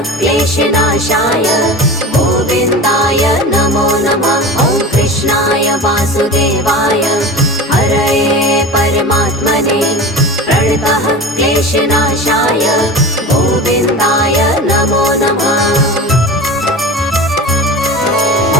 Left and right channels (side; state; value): both; normal; correlation 0.32